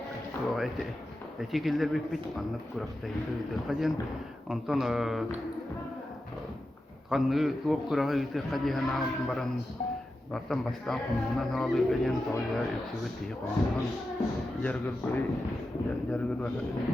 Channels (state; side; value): normal; both; correlation 0.91